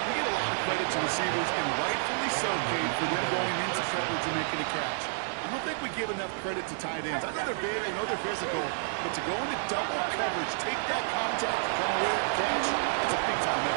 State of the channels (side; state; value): left; silent; digital silence